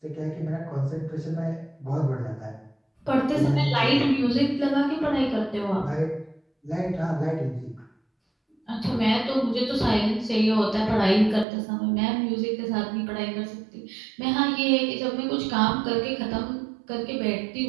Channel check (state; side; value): drops out; left; at 11.5 s